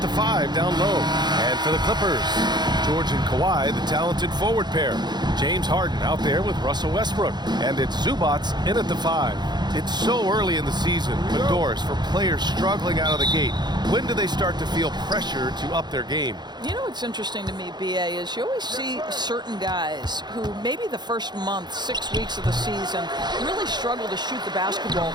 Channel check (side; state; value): left; late; 0.21 ms